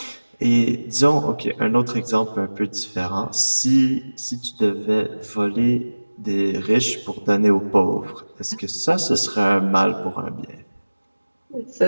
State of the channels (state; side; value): inverted; both; correlation -1.00